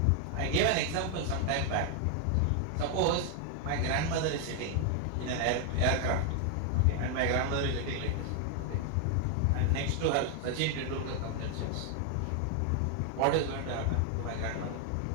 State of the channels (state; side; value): different; both; correlation 0.00